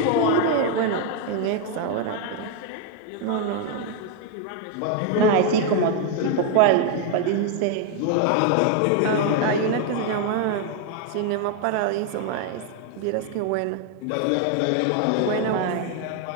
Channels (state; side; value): different; both; correlation 0.01